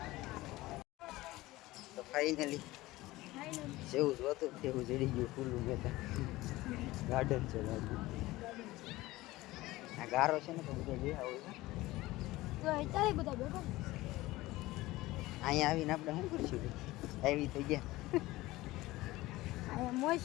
તો ફાઇનલી જેવું જોતું તેવું જડી ગયું ખુલ્લું મેદાન. ગાર્ડન છે ગાર્ડન. આ ગારો છે ને તો બધા બેહા હોય તો અત્યારે બધા બેઠો. અહીંયા આવીને આપણે શું કરશું? આવી તો ગયા. અહીંયા મોજ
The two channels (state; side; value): quieter; right; 18.6 dB